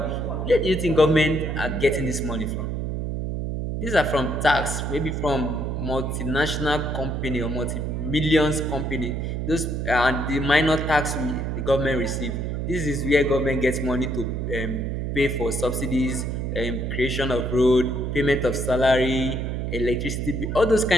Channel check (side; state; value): right; noise; hum, 2 dB below the sound